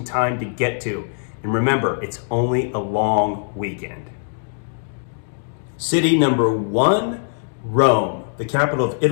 time to get to. And remember, it's only a long weekend. City number 1, Rome, the capital of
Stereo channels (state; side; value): silent; right; digital silence